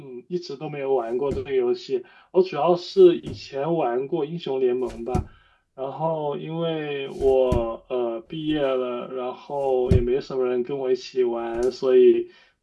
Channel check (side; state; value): both; identical; correlation 1.00